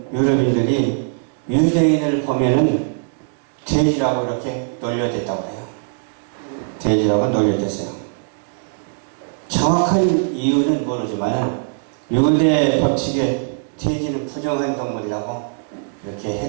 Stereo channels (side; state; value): left; silent; digital silence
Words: 유럽인들이 유대인을 보면은 돼지라고 이렇게 놀려댔다고 해요. 돼지라고 놀려댔어요. 정확한 이유는 모르지만 유대 법칙에 돼지는 부정한 동물이라고 이렇게